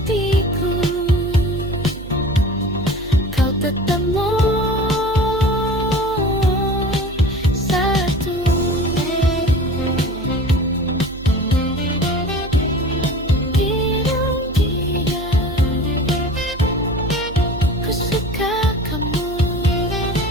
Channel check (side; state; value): right; noise; hum, 13 dB below the sound